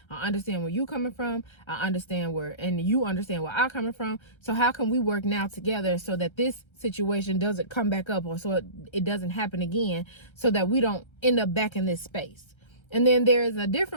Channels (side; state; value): right; late; 1.3 ms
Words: I understand where you coming from, I understand where, and you understand where I'm coming from. So how can we work now together so that this situation doesn't come back up, or so it doesn't happen again, so that we don't end up back in this space? And then there's a